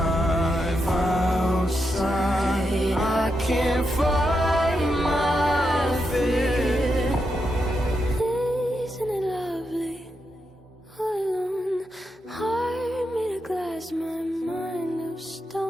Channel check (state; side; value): normal; both; correlation 0.84